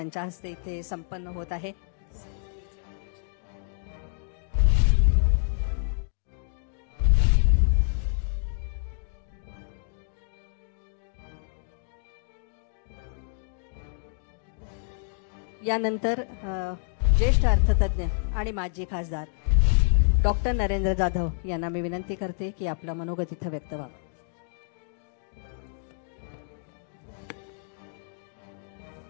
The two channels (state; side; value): silent; right; digital silence